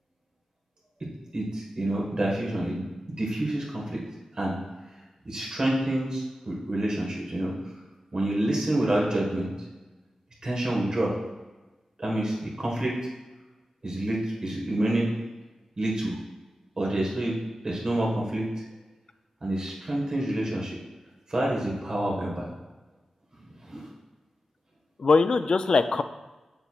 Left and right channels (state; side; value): normal; both; correlation 0.91